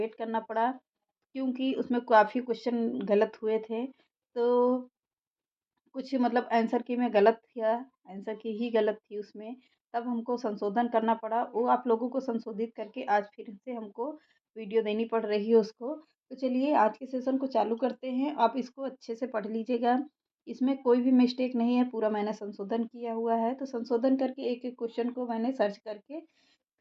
करना पड़ा क्योंकि उसमें काफ़ी क्वेश्चन गलत हुए थे। तो कुछ मतलब आंसर की में गलत था, आंसर की ही गलत थी उसमें, तब हमको संशोधन करना पड़ा। वो आप लोगों को संशोधित करके आज फिर से हमको वीडियो देनी पड़ रही है उसको। तो चलिए आज के सेशन को चालू करते हैं। आप इसको अच्छे से पढ़ लीजिएगा, इसमें कोई भी मिस्टेक नहीं है, पूरा मैंने संशोधन किया हुआ है। तो संशोधन करके एक-एक क्वेश्चन को मैंने सर्च करके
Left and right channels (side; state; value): both; identical; correlation 1.00